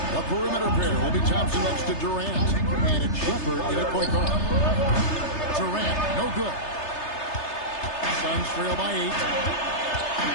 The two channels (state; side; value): late; right; 3.3 ms